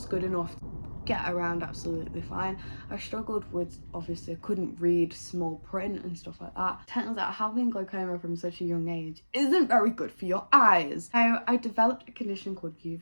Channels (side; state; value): both; inverted; correlation -1.00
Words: good enough to get around absolutely fine. I struggled with, obviously I couldn't read small print and stuff like that. Turns out having glaucoma from such a young age isn't very good for your eyes. So I developed a condition called